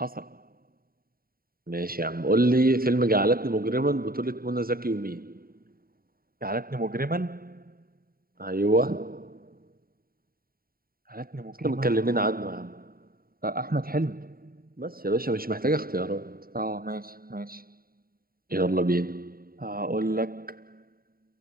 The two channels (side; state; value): left; late; 0.43 ms